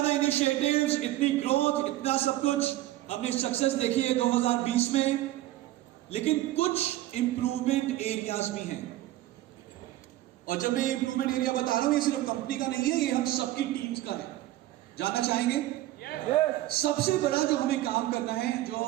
इनिशिएटिव्स, इतनी ग्रोथ, इतना सब कुछ हमने सक्सेस देखी है 2020 में, लेकिन कुछ इंप्रूवमेंट एरियाज भी हैं। और जब मैं इंप्रूवमेंट एरिया बता रहा हूं, ये सिर्फ कंपनी का नहीं है, ये हम सबकी टीम्स का है। जानना चाहेंगे? सबसे बड़ा जो हमें काम करना है, जो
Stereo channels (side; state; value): left; quieter; 15.5 dB